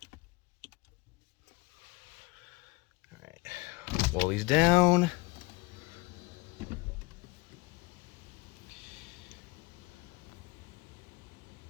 All right. Wall these down.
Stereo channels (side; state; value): right; quieter; 25.0 dB